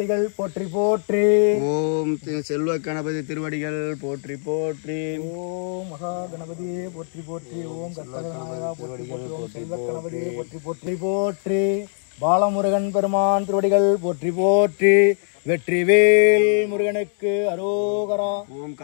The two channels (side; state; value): right; silent; digital silence